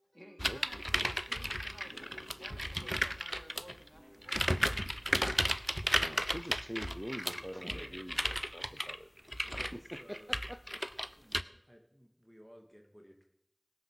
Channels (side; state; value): both; identical; correlation 1.00